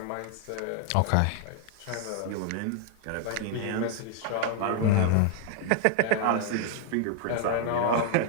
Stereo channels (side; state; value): both; different; correlation 0.00